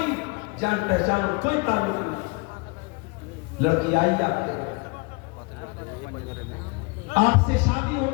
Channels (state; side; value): quieter; right; 28.6 dB